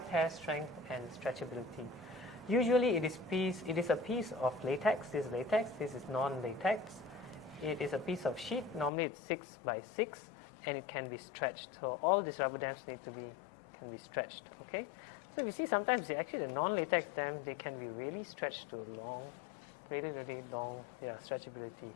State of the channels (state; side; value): drops out; right; at 8.9 s